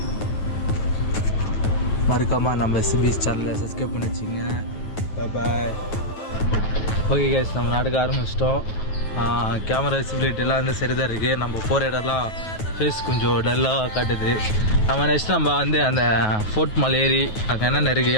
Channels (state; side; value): late; right; 9.3 ms